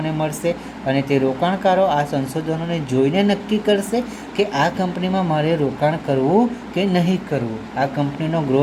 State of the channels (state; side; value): identical; both; correlation 1.00